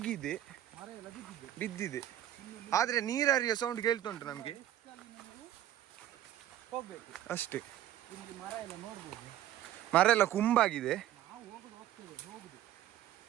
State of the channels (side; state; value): left; quieter; 12.5 dB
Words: ಮರ ಎಲ್ಲ ಬಿದ್ದಿದೆ. ಬಿದ್ದಿದೆ. ಆದ್ರೆ ನೀರರಿಯ ಸೌಂಡ್ ಕೇಳ್ತುಂಟು ನಮ್ಗೆ ಹೋಗ್ಬೇಕು ಅಷ್ಟೇ. ಇಲ್ಲಿ ಮರ ಎಲ್ಲ ನೋಡ್ಬೋದು. ಮರ ಎಲ್ಲ ಕುಂಬಾಗಿದೆ. ನಾವು ಹೋಗ್ತೇವೆ